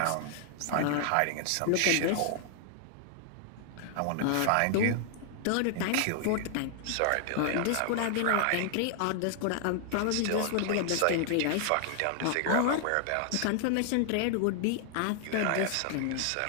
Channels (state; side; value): different; both; correlation 0.00